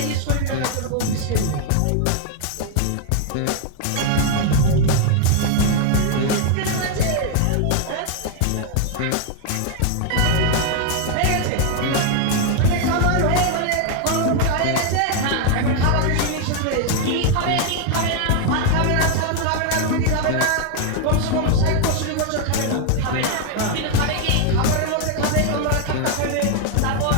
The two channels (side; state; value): both; different; correlation 0.00